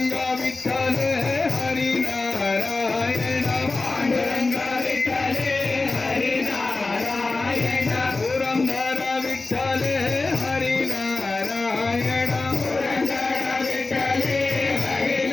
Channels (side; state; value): right; quieter; 3.5 dB